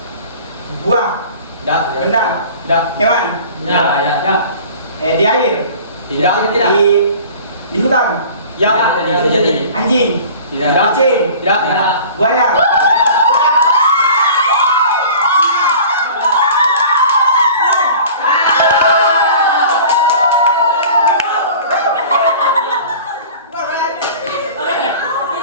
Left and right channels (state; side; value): inverted; both; correlation -0.43